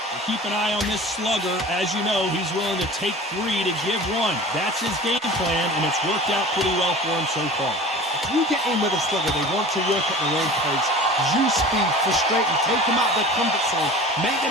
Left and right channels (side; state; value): both; normal; correlation 0.39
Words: keep an eye on this slugger. As you know, he's willing to take 3 to give 1. That's his game plan, and it's worked out pretty well for him so far. If you get in with a slugger, they want to work at their own pace. Use speed, frustrate them, take them out of their comfort zone, make